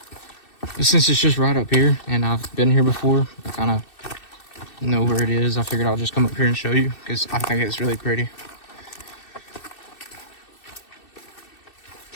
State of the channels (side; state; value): right; late; 2.6 ms